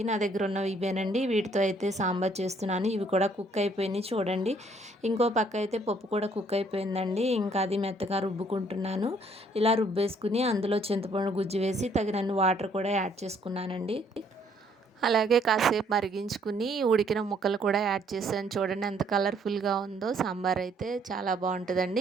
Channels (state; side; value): normal; both; correlation 0.65